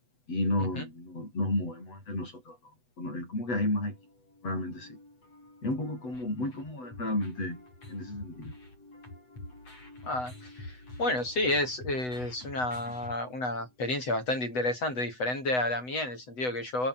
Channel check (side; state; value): right; late; 8.0 ms